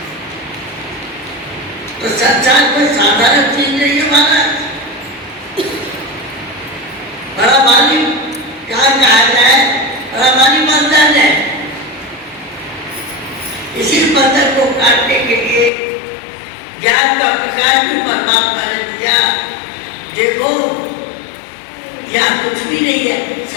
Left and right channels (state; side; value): drops out; right; at 15.7 s